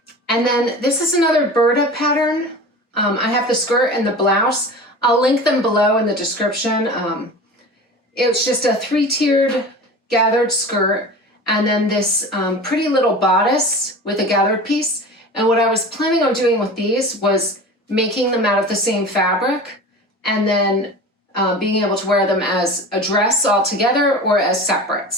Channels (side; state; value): both; normal; correlation 0.35